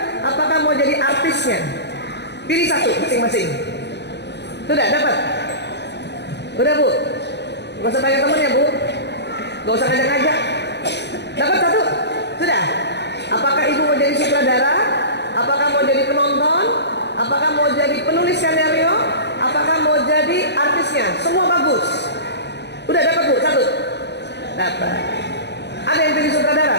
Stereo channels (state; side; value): late; right; 0.50 ms